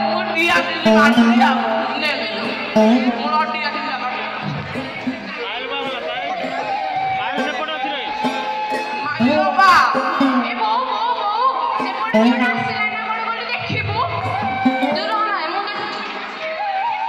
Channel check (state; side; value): identical; both; correlation 1.00